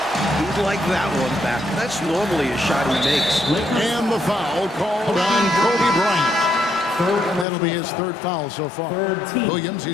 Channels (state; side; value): drops out; right; at 7.5 s